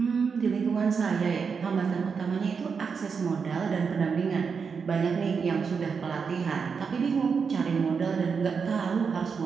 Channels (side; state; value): left; quieter; 5.8 dB